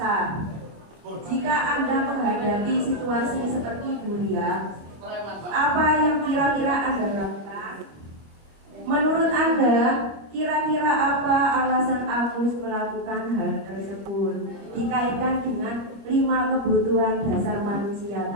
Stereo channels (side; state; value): left; late; 25 ms